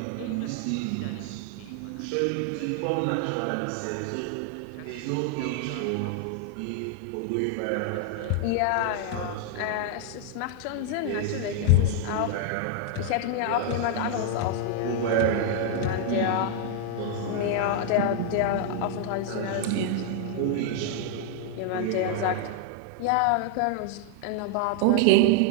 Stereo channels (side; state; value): both; different; correlation 0.00